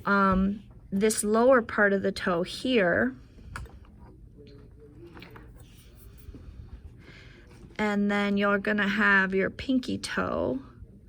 this lower part of the toe here, and then you're going to have your pinky toe.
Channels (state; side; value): identical; both; correlation 1.00